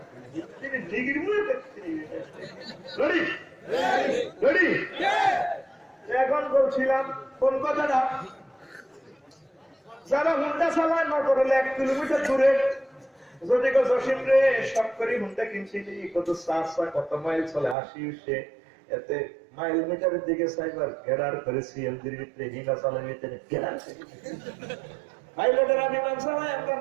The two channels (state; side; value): drops out; left; at 17.8 s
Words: তিনি degree ready এখন বলছিলাম কোন কথাটা যারা হুন্ডা চালায় নজর হলে 1 কিলোমিটার দূরে যদি জসিম রে সব করে হুন্ডা কিনছিলি কত চাষা কত মাইল চলে আসি সে এতে মাইল মিটারের দিকে সাইবার ঘেরার করে সিএলজির ভিতরে হিনা চালায় ভিতরে ঘেরার পাইলটেরা বিমান চালায় একদম